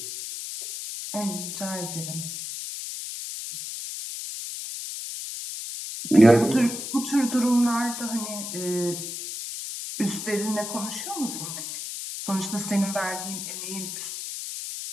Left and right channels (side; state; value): left; noise; hiss, 7 dB below the sound